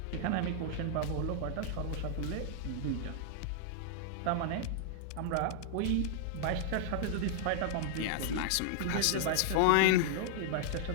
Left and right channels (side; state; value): both; different; correlation -0.01